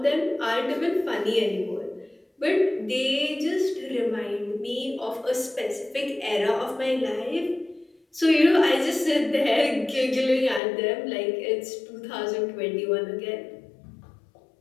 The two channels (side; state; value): right; drops out; at 10.6 s